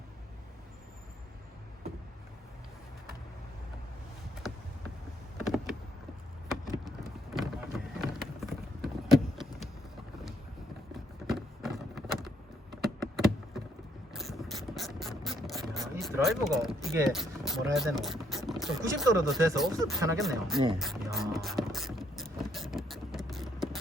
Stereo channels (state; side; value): normal; both; correlation 0.70